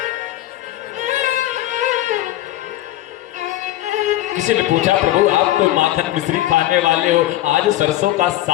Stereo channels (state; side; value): quieter; right; 15.0 dB